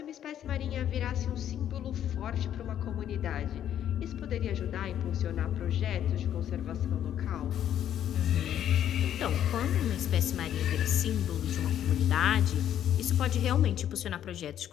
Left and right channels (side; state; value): right; quieter; 10.5 dB